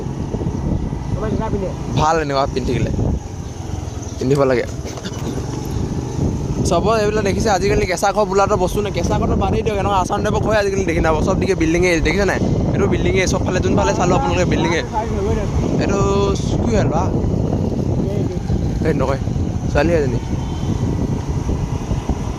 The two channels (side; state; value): both; identical; correlation 1.00